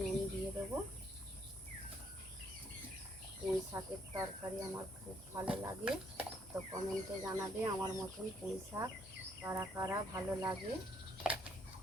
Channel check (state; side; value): normal; both; correlation 0.68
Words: দিয়ে দেবো। পুঁই শাকের তরকারি আমার খুব ভালো লাগে, তো কমেন্টে জানাবে আমার মতন পুঁই শাক কারা কারা ভালো লাগে।